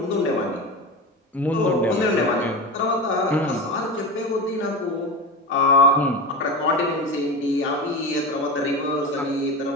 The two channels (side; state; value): both; normal; correlation 0.24